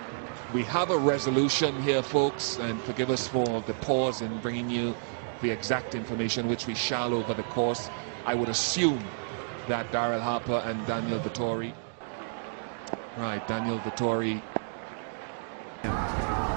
we have a resolution here, folks, and forgive us for the pause in bringing you the exact information, which we shall over the course. I would assume that Daryl Harper and Daniel Vettori. Right, Daniel Vettori.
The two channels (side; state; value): left; silent; digital silence